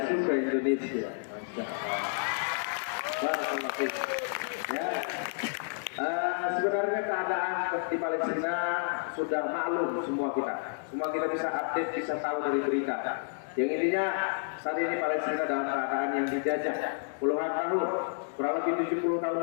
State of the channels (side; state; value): right; silent; digital silence